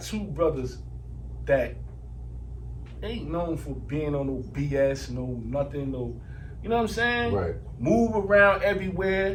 two brothers that ain't known for being on no BS, no nothing, no, you know what I'm saying? Right. Move around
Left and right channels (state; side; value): identical; both; correlation 1.00